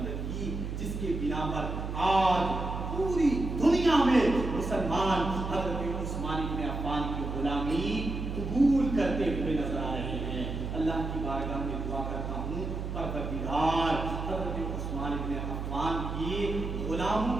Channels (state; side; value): noise; right; hum, 4 dB below the sound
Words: کی، جس کے بنا پر آج پوری دنیا میں مسلمان حضرت عثمان بن عفان کی غلامی قبول کرتے ہوئے نظر آ رہے ہیں۔ اللہ کی بارگاہ میں دعا کرتا ہوں پروردگار حضرت عثمان بن عفان کی غلاموں